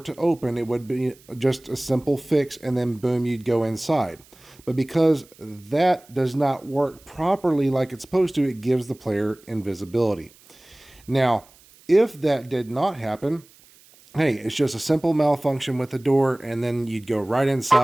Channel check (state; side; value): noise; right; hiss, 27 dB below the sound